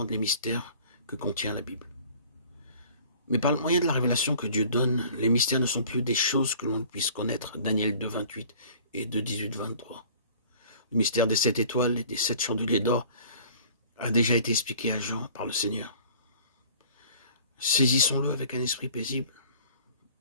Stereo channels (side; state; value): both; inverted; correlation -0.49